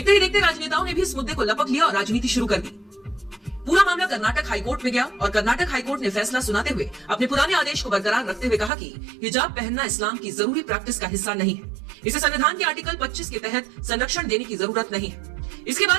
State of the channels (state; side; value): drops out; left; at 8.7 s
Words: ही देखते राजनेताओं ने भी इस मुद्दे को लपक लिया और राजनीति शुरू कर दी। पूरा मामला कर्नाटक हाईकोर्ट में गया और कर्नाटक हाईकोर्ट ने फैसला सुनाते हुए अपने पुराने आदेश को बरकरार रखते हुए कहा कि हिजाब पहनना इस्लाम की जरूरी प्रैक्टिस का हिस्सा नहीं है। इसे संविधान के आर्टिकल 25 के तहत संरक्षण देने की जरूरत नहीं है। इसके